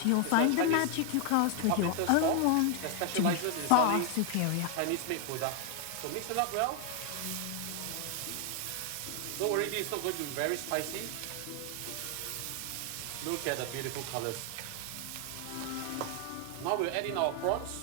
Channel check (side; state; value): both; different; correlation 0.00